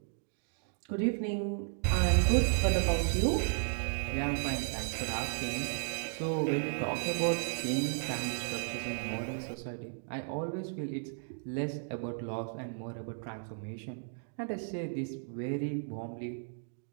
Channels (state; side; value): silent; left; digital silence